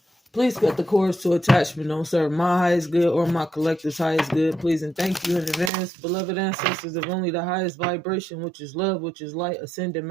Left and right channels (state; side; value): drops out; left; at 5.7 s